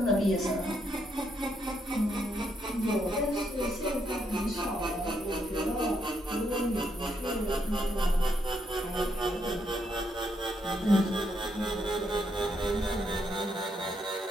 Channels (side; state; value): both; normal; correlation 0.76